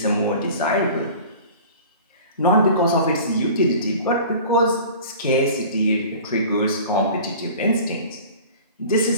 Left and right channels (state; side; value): inverted; both; correlation -0.41